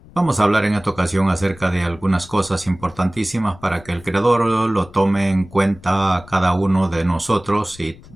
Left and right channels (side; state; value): left; noise; rumble, 22 dB below the sound